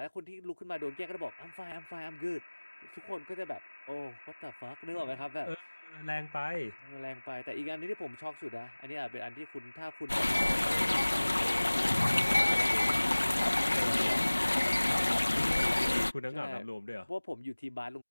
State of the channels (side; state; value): both; inverted; correlation -1.00